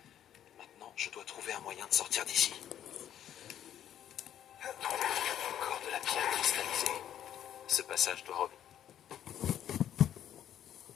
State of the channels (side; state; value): right; quieter; 10.6 dB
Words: Maintenant, je dois trouver un moyen de sortir d'ici. Encore de la pierre cristallisée. Ce passage doit remonter.